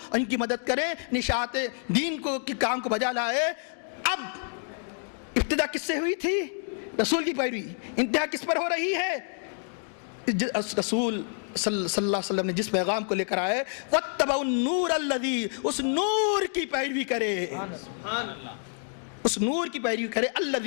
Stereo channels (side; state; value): right; silent; 57 dB below the other